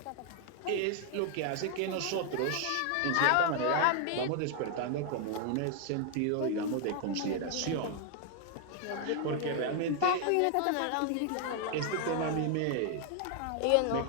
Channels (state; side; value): different; both; correlation 0.00